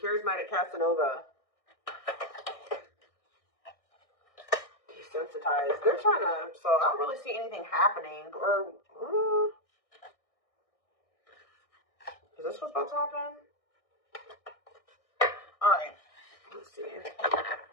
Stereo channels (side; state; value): right; late; 1.6 ms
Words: Casanova? Desensitized. They're trying to, so I don't really see anything happening. Or, is this what's about to happen? Alright. Let's see.